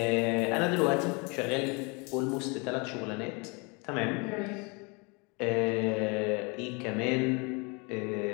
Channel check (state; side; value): quieter; right; 30.4 dB